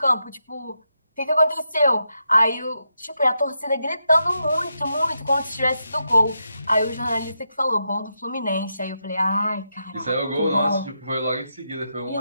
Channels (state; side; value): inverted; both; correlation -0.84